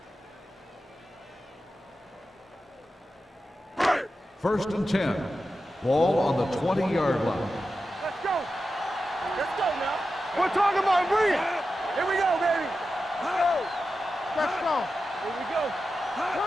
First and 10. Ball on the 20-yard line. Let's go. Let's go now. We're talking about bring it. Here we go, baby. Let's go. Let's go. Here we go.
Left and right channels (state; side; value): normal; both; correlation 0.91